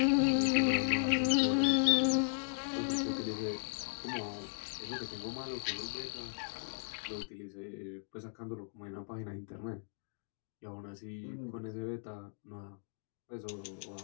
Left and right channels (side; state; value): right; silent; 53 dB below the other